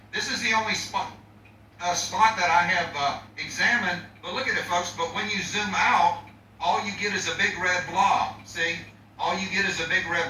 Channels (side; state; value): both; identical; correlation 1.00